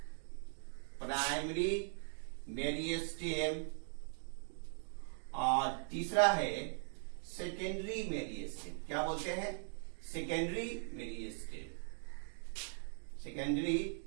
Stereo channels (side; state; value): left; silent; digital silence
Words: और तीसरा है सेकेंडरी मेरिस्टेम। क्या बोलते हैं? Secondary